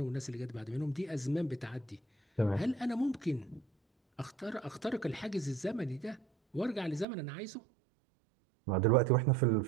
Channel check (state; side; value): drops out; left; at 7.1 s